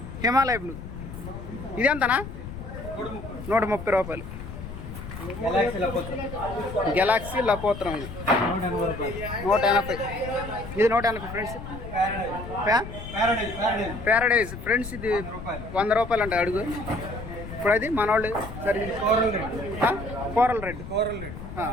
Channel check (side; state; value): left; noise; rumble, 10 dB below the sound